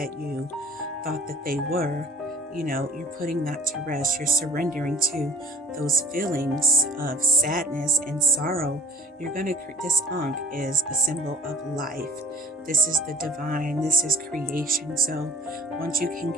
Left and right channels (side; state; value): both; normal; correlation 0.50